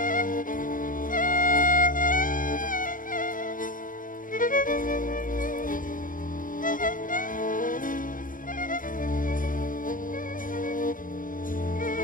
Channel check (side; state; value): right; late; 0.39 ms